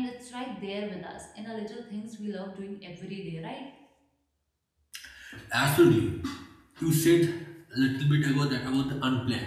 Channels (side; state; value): both; identical; correlation 1.00